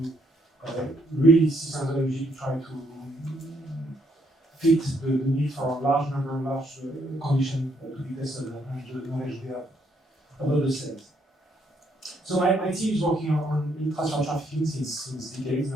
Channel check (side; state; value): both; normal; correlation 0.72